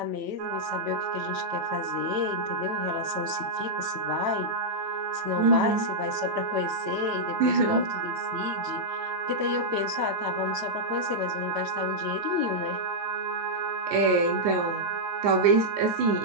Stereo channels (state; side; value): late; left; 9.1 ms